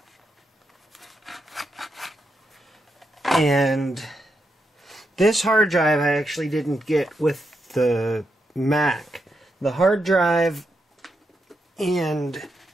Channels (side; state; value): both; normal; correlation 0.83